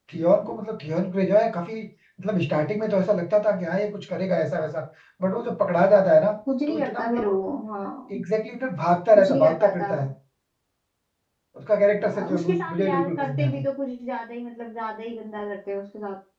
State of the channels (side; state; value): both; identical; correlation 1.00